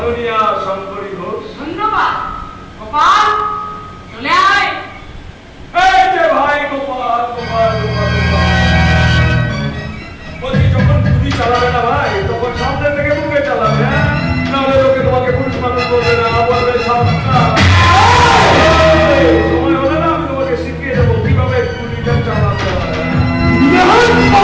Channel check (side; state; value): both; identical; correlation 1.00